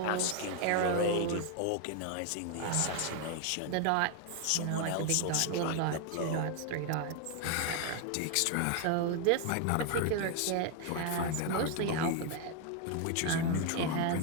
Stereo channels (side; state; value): both; different; correlation 0.01